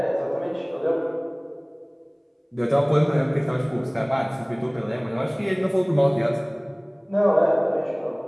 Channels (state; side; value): identical; both; correlation 1.00